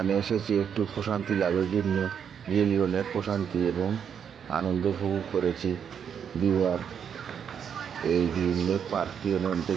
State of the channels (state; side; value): quieter; left; 7.8 dB